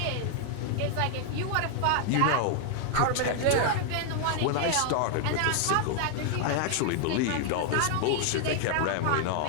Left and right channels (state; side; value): different; both; correlation 0.00